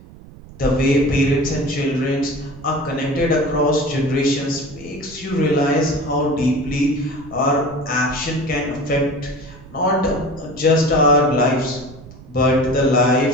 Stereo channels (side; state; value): right; noise; rumble, 19 dB below the sound